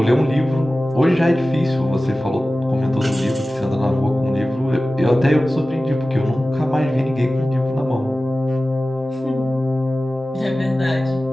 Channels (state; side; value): normal; both; correlation 0.96